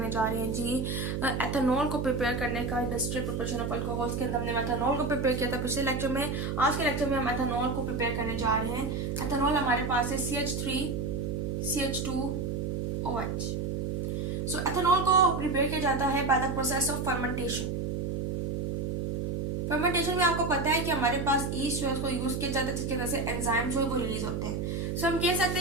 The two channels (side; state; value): right; noise; hum, 1 dB below the sound